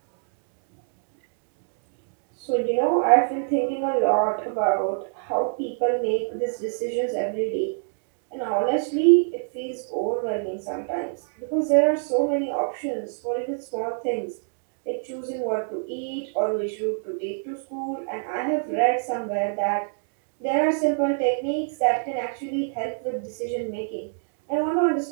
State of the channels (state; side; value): silent; left; digital silence